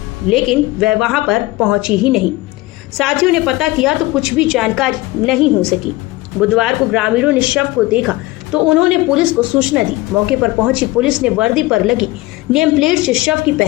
लेकिन वह वहां पर पहुंची ही नहीं। साथियों ने पता किया तो कुछ भी जानकारी नहीं हो सकी। बुधवार को ग्रामीणों ने शव को देखा तो उन्होंने पुलिस को सूचना दी। मौके पर पहुंची पुलिस ने वर्दी पर लगी नेम प्लेट से शव की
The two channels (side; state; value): right; quieter; 19.5 dB